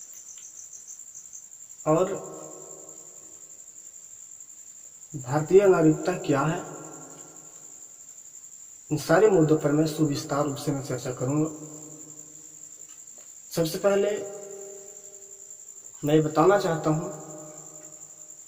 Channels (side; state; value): both; identical; correlation 1.00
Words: और भारतीय नागरिकता क्या है। इन सारे मुद्दों पर मैं सुविस्तार रूप से मैं चर्चा करूंगा। सबसे पहले मैं बताना चाहता हूं